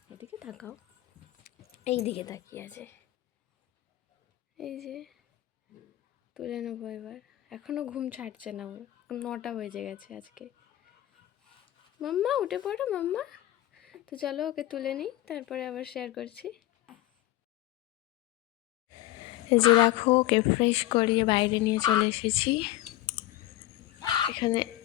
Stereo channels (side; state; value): right; quieter; 15.3 dB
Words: এদিকে তাকাও, এই দিকে তাকিয়ে আছে। এই যে তুলে নেবো এবার, এখনও ঘুম ছাড়ছে না ওর, 9টা বেজে গেছে আজকে। মাম্মা উঠে পড়ো মাম্মা। তো চলো ওকে তুলে নিই, তারপরে আবার শেয়ার করছি। এই যে দেখো, ওকে ফ্রেশ করিয়ে বাইরে নিয়ে চলে এসেছি। এখানে